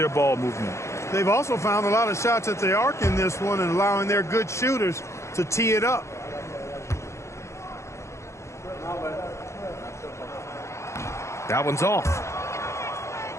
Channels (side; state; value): right; late; 0.14 ms